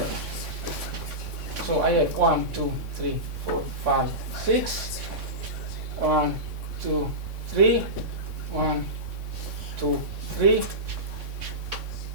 So I have 1, 2, 3, 4, 5, 6. 1, 2, 3. 1, 2, 3.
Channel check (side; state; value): left; late; 3.6 ms